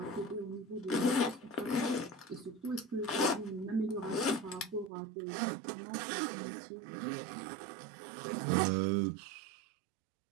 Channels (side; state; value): left; drops out; at 4.9 s